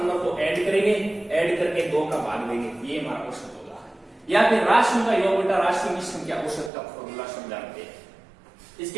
को ऐड करेंगे, ऐड करके 2 का भाग देंगे, ये हमारा औसत होगा। या फिर राशियों का योग बटा राशियों की संख्या, औसत का फॉर्मूला समझाते हैं।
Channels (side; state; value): left; drops out; at 6.7 s